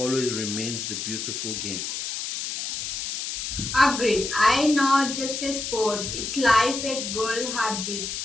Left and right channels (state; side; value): noise; left; hiss, 4 dB below the sound